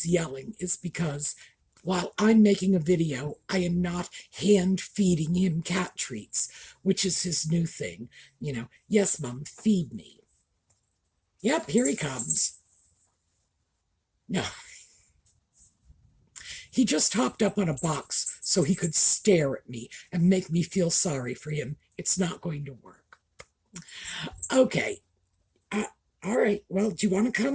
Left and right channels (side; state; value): both; identical; correlation 1.00